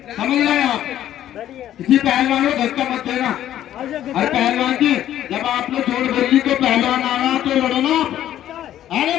आप, किसी पहलवान को धक्का मत देना। अरे पहलवान जी जब आपने जोड़ बोली तो पहलवान आ रहा तो लड़ो ना आप। अरे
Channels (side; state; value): right; quieter; 11.9 dB